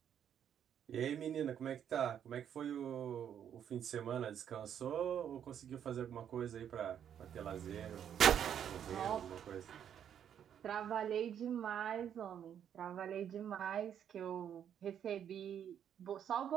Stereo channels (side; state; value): left; quieter; 9.1 dB